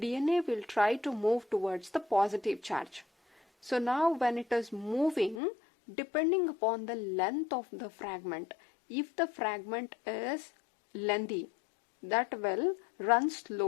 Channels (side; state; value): right; drops out; at 5.4 s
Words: will try to move towards the positive charge. So now when it is moving, depending upon the length of the fragment, if the fragment is lengthy, that well runs